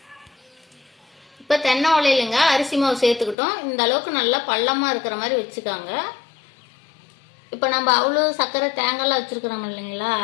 இப்ப தென்னை ஓலையிலங்க அரிசி மாவு சேர்த்துக்கிட்டோம். இந்த அளவுக்கு நல்லா பள்ளமா இருக்கிற மாதிரி வச்சுக்காங்க. இப்ப நம்ம அவ்வளோ சர்க்கரை தேங்காய்லாம் வச்சிருக்கிறோம் இல்லைங்களா,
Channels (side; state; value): right; drops out; at 3.4 s